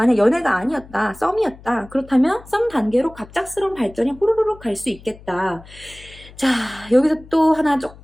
연애가 아니었다, 썸이었다, 그렇다면 썸 단계로 갑작스러운 발전이 호로록 갈 수 있겠다. 자, 여기서 또 하나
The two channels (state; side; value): noise; left; hum, 21 dB below the sound